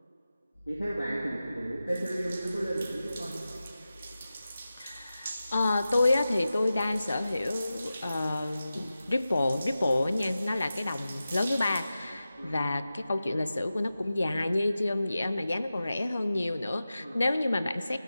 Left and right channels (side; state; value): both; inverted; correlation -0.94